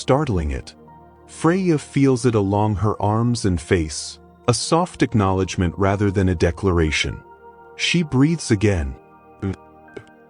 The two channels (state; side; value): identical; both; correlation 1.00